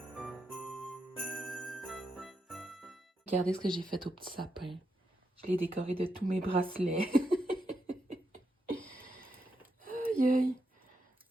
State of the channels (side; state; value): both; normal; correlation 0.83